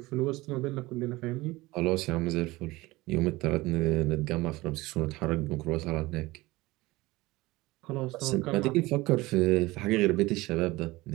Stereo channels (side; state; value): left; quieter; 20.2 dB